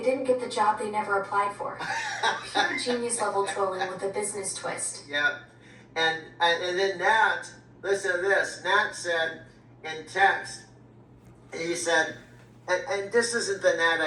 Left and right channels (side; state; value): both; identical; correlation 1.00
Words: didn't get the job they never applied for. Pure genius level trolling with a business twist. Yeah. And then Nat, listen to this. Nat said in text, he said, and this isn't the Nat